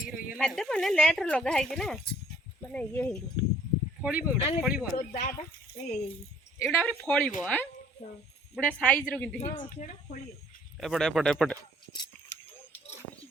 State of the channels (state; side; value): normal; both; correlation 0.58